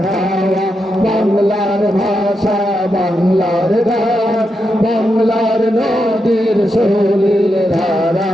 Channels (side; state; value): both; normal; correlation 0.85